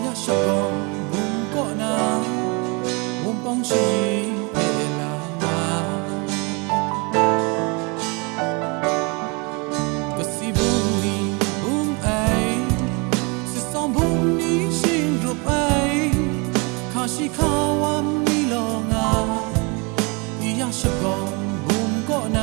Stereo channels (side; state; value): left; quieter; 30.3 dB